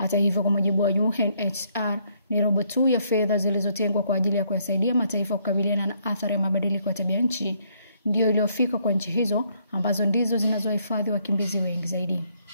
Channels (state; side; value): inverted; both; correlation -0.70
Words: hivyo, kwa mujibu wa UNHCR, ni robo tu ya fedha zilizotengwa kwa ajili ya kuyasaidia mataifa kukabiliana na athari ya mabadiliko ya tabia nchi ndio iliyofika kwa nchi hizo, ambazo ndizo zinazohifadhi wakimbizi wengi zaidi.